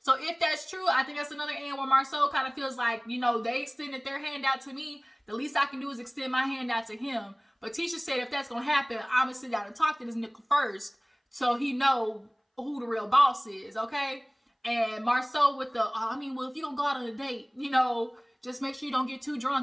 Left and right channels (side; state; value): both; identical; correlation 1.00